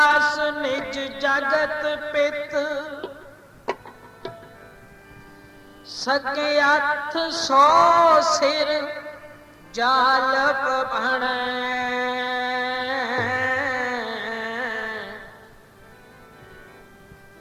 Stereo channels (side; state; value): both; identical; correlation 1.00